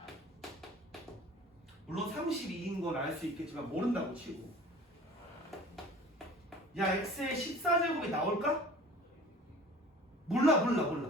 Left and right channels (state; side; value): normal; both; correlation 0.44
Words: 물론 32인 걸 알 수 있겠지만 모른다고 치고. 야, x의 14제곱이 나올까? 몰라.